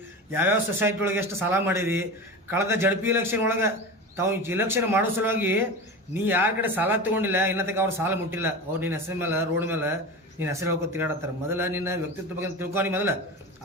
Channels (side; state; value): both; normal; correlation 0.28